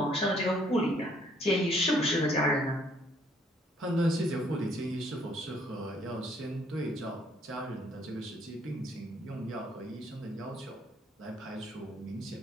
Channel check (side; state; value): both; normal; correlation 0.65